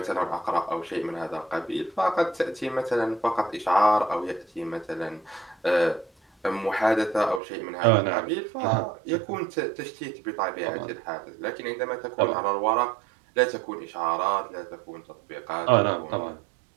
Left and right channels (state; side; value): drops out; left; at 7.4 s